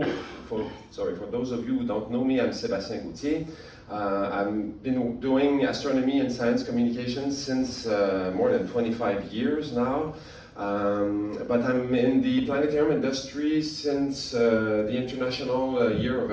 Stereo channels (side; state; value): both; identical; correlation 1.00